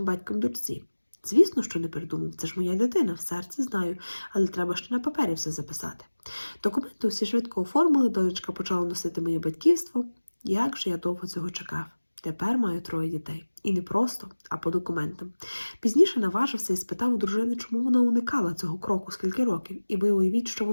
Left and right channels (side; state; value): both; inverted; correlation -1.00